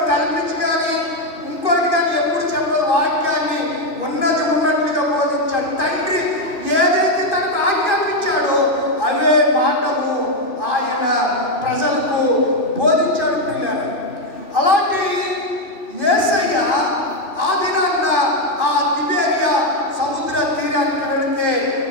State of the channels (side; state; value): right; late; 2.9 ms